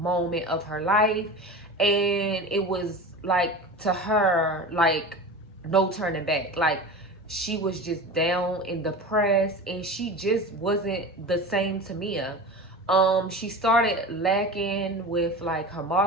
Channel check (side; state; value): both; normal; correlation 0.31